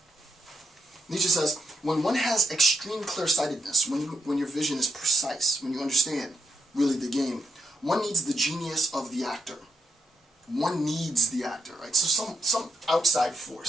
Nietzsche says, when one has extreme clear-sightedness, when your vision is precise, when you understand really the game, one needs the genius of the actor. One needs the actor, right? So some outside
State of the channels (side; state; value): both; normal; correlation 0.80